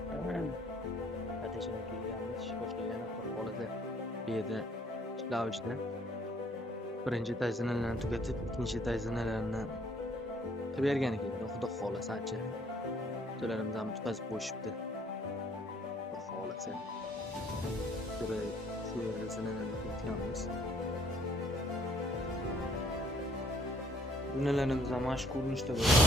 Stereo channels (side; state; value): both; normal; correlation 0.62